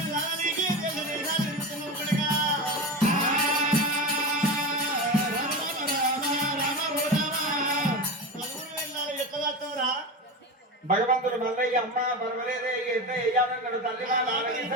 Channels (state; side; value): normal; both; correlation 0.23